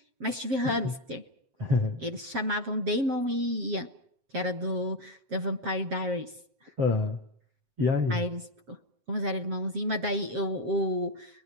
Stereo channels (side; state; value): left; late; 7.7 ms